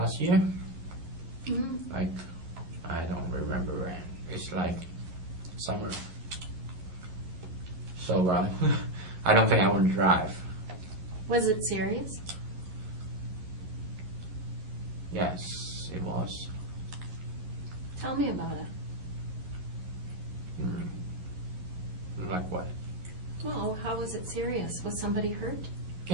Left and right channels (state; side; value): late; left; 11 ms